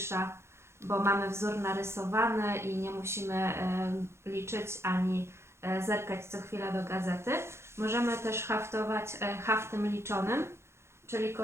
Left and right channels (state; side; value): late; left; 0.13 ms